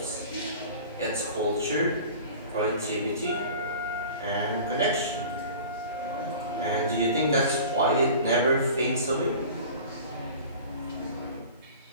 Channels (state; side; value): inverted; both; correlation -0.40